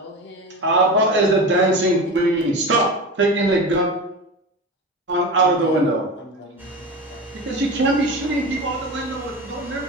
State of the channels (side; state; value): both; normal; correlation 0.27